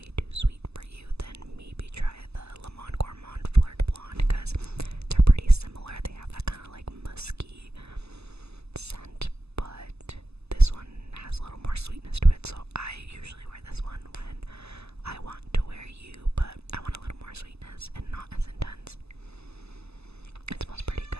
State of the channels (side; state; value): left; late; 0.79 ms